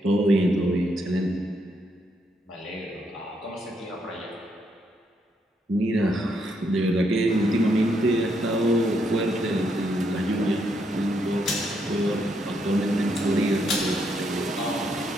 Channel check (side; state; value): both; normal; correlation 0.76